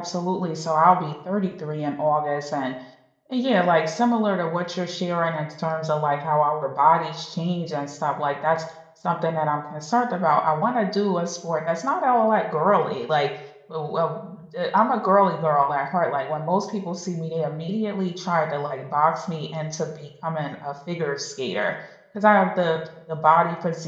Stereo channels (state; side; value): identical; both; correlation 1.00